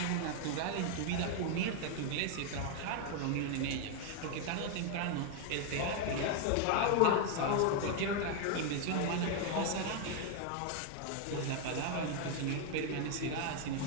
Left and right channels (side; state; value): both; different; correlation 0.00